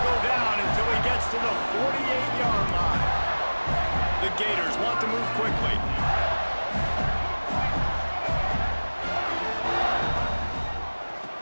go down until he gets to the 48-yard line. The Gators want to move quickly.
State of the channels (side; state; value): both; inverted; correlation -1.00